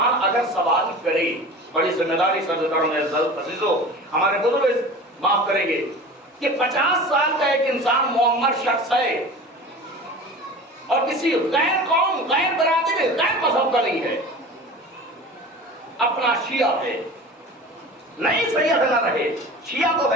اگر سوال کرے، بڑی ذمہ داری عزیزو ہمارے بزرگ معاف کریں گے کہ 50 سال کا ایک انسان معمر شخص ہے اور کسی غیر قوم، غیر برادری، غیر مذہب کا نہیں ہے، اپنا شیعہ ہے، نہیں سید نہ رہے، شیعہ تو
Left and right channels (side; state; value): both; normal; correlation 0.37